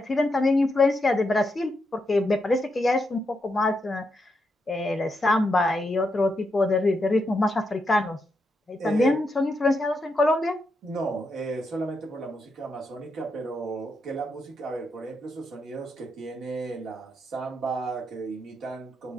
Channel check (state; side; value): normal; both; correlation 0.83